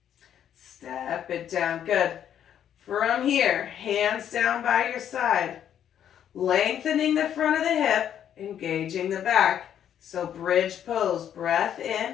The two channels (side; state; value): right; quieter; 9.7 dB